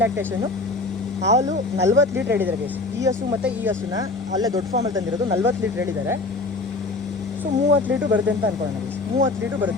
ಲ್ಯಾಕ್ಟೇಷನ್ನು. ಹಾಲು 40 ಲೀಟ್ರ್ ಹೇಳಿದ್ದಾರೆ ಗೈಸ್. ಈ ಹಸು ಮತ್ತು ಈ ಹಸುನ ಅಲ್ಲೇ ದೊಡ್ಡ ಫಾರ್ಮಲ್ಲಿ ತಂದಿರೋದು 40 ಲೀಟ್ರ್ ಹೇಳಿದ್ದಾರೆ. ಸೊ 30 ಲೀಟ್ರ್ ಬರುತ್ತೆ ಅಂತ ಅನ್ಕೊಳ್ಳೋಣ ಗೈಸ್. 30 ಲೀಟ್ರ್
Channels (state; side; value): quieter; right; 3.3 dB